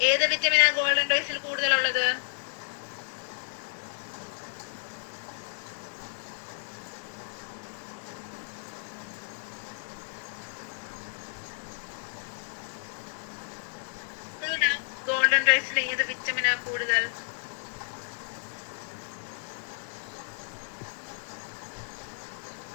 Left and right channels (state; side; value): silent; right; digital silence